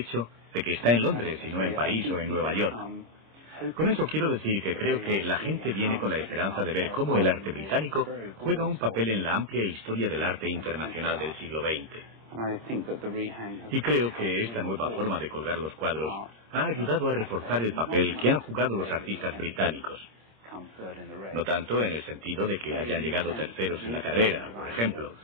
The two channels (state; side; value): late; left; 26 ms